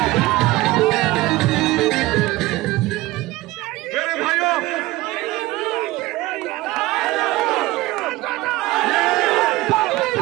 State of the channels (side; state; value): left; quieter; 18.9 dB